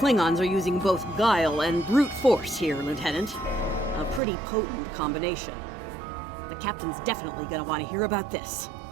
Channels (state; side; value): drops out; left; at 4.2 s